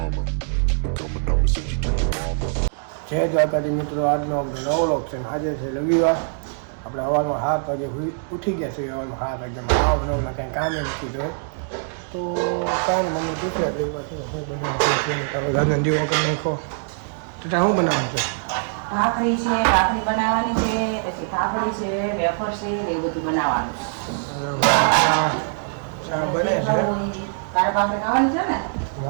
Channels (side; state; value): left; silent; digital silence